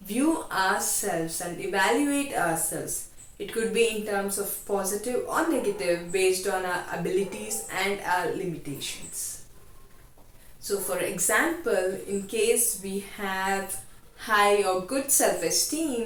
view ourselves and evaluate ourselves. It could be in terms of positive or negative based on our abilities and our limitations. So for example, in case we have high or good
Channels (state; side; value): identical; both; correlation 1.00